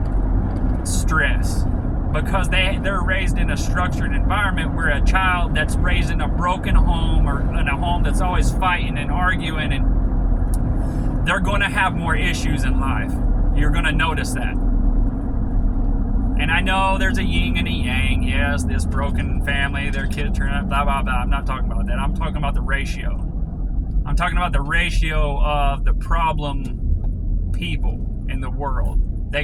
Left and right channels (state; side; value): identical; both; correlation 1.00